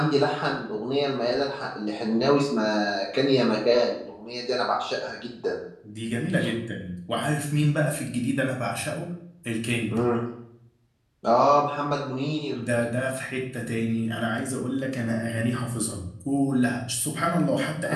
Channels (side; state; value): both; identical; correlation 1.00